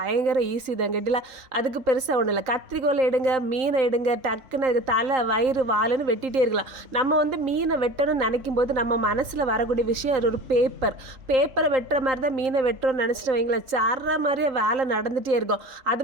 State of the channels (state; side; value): late; left; 3.8 ms